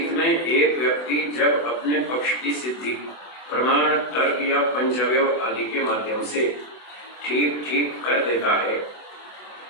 में एक व्यक्ति जब अपने पक्ष की सिद्धि प्रमाण, तर्क या पंचअवयव आदि के माध्यम से ठीक ठीक कर देता है,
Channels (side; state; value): right; late; 24 ms